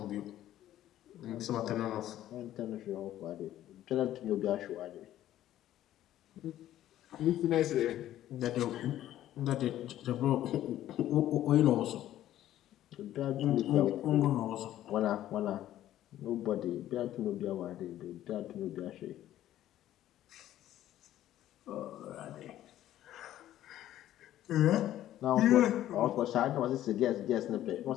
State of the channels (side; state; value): right; quieter; 12.9 dB